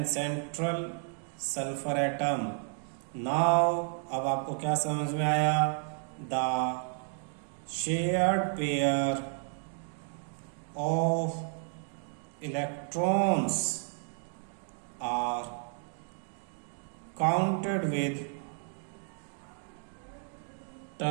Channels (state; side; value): silent; left; 56 dB below the other